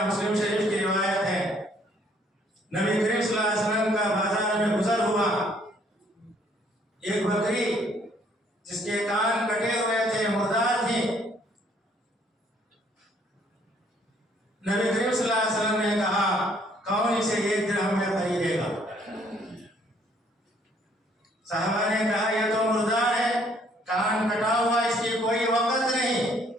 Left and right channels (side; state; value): both; normal; correlation 0.64